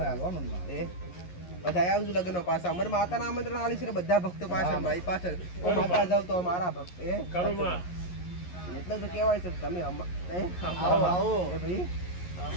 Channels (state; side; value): late; right; 11 ms